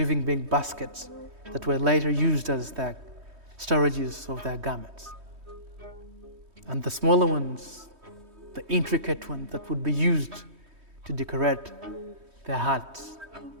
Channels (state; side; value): late; left; 3.2 ms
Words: being baskets that were later used as the storages of their garments. And the smaller ones, the intricate ones that would be used to decorate their huts.